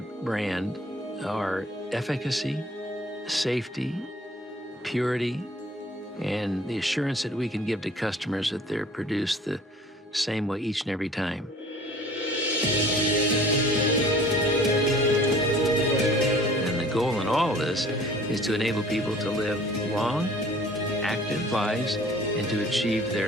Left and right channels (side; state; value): both; normal; correlation 0.50